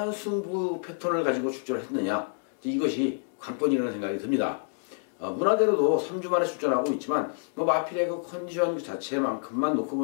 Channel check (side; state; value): right; silent; 59 dB below the other